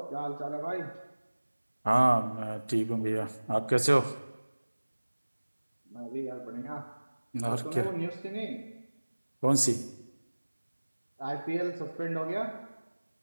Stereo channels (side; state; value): both; inverted; correlation -1.00